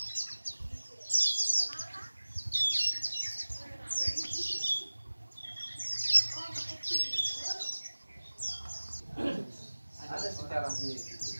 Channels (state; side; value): inverted; both; correlation -1.00